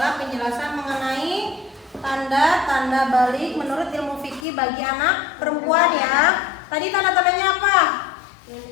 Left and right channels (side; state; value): right; drops out; at 4.5 s